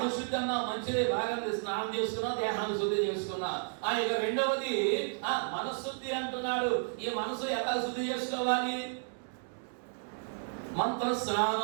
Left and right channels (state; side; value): silent; left; digital silence